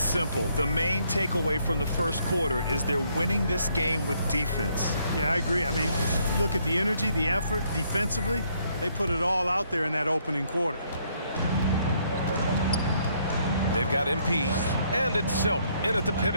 simple. The main takeaway from the first quarter is they're winning this game with defense. Yeah, I agree. I mean, look at the energy, the effort defensively. They put it all out there in that opening quarter. They've got MP, and it's Silk in at the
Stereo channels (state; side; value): inverted; both; correlation -0.70